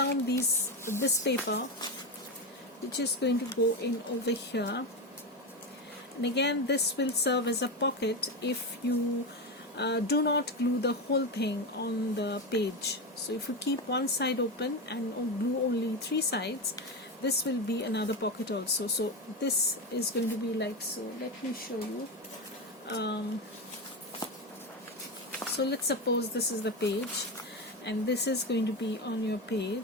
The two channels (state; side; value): normal; both; correlation 0.16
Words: this paper, which is going to go in over here. And again, this will serve as a pocket if you do not glue the whole thing on the page. So if you keep one side open and glue only 3 sides, this will be another pocket also. So this is going to be like so. Let me show you. So let's suppose this is the page, and this is going to be on your